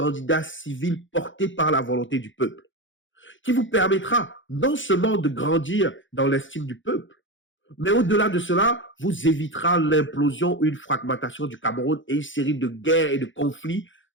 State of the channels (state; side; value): late; right; 0.56 ms